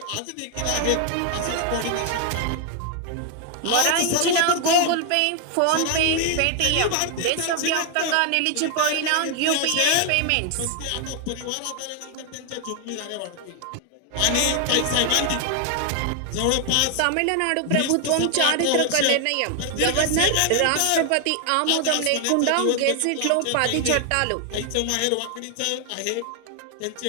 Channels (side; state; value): both; different; correlation 0.00